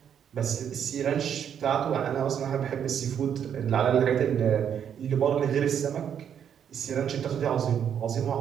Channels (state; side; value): quieter; left; 8.6 dB